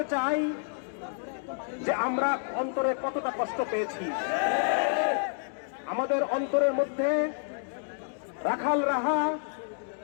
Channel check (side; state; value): right; silent; digital silence